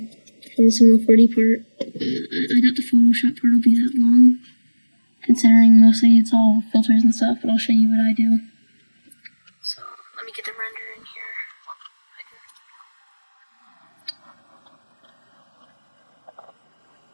the single 40 part. I doubt the Photoshop part will be that long, considering mostly it's all filters and stuff, but I'll show you what I do. So, let me get the render in here.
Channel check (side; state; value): both; inverted; correlation -1.00